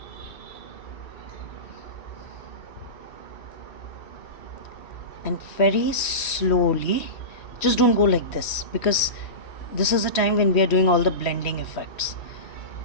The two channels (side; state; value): right; late; 3.1 ms